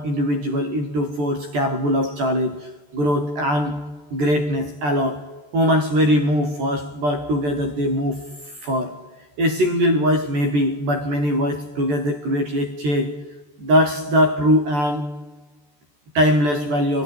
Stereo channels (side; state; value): left; late; 14 ms